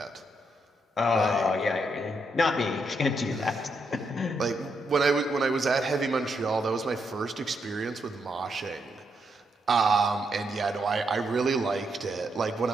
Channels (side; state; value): both; normal; correlation 0.79